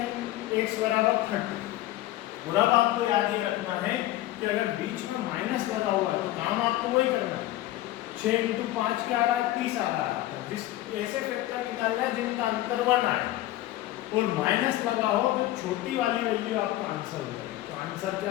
x बराबर 30। और अब आपको याद ये रखना है कि अगर बीच में माइनस लगा हुआ है तो काम आपको वही करना है। 6 × 5 क्या आ रहा है, 30 आ रहा है। जिस ऐसे फैक्टर निकालना है जिनका अंतर 1 आए और माइनस लगा हो तो छोटी वाली वैल्यू आपका आंसर हो जाएगा। तो आंसर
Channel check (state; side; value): quieter; right; 15.6 dB